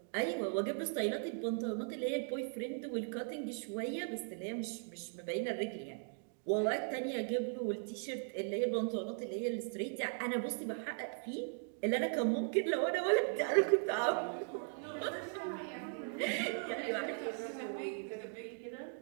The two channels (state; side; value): silent; left; 52 dB below the other